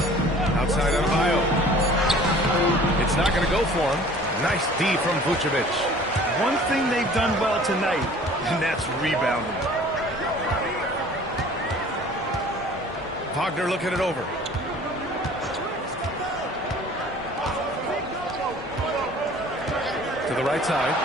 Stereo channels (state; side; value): normal; both; correlation 0.49